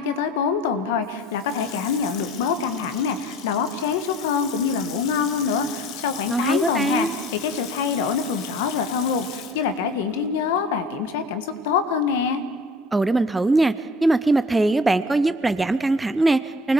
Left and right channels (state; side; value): normal; both; correlation 0.45